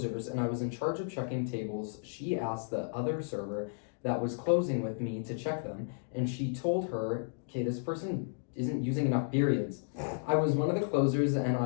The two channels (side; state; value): right; silent; digital silence